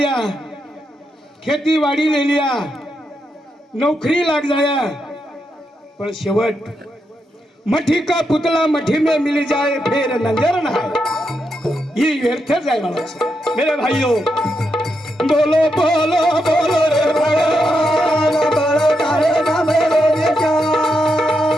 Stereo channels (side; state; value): both; normal; correlation 0.83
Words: खेती बाड़ी ले लिया, नौकरी लाग जाया, पर शेवट मठी का पुतला मठी में मिल जाए फिर नजर ना आए, ये व्यर्थ जाए वाला है। मेरे भाइयों बोलो बोलो बोलो रे भगवान, बड़ा तारे नाम रे क्या